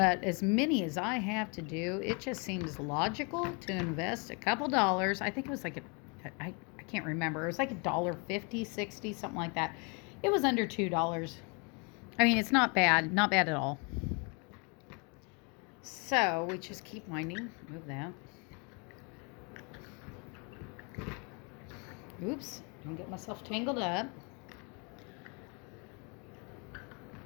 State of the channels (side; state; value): right; quieter; 33.4 dB